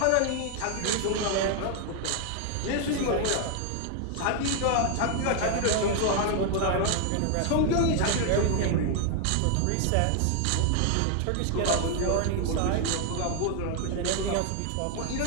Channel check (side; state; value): both; different; correlation 0.00